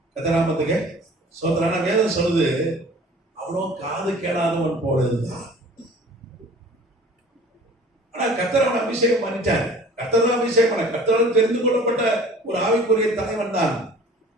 கத்தராமத்துக்கு சோதரான வேதம் சொல்லுது, அவனும் காது கேளாதவன் போல இருந்தான். ஆனா கத்தரவன் அபிஷேகம் பண்ணிட்டார். கத்தர் அபிஷேகம் பண்ண, கத்தரால் தெரிந்து கொள்ளப்பட்ட ஒரு ஆவிக்குரிய தலைவன் தான்.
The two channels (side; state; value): both; normal; correlation 0.47